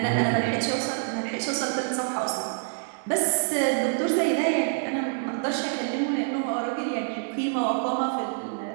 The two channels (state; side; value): silent; left; 61 dB below the other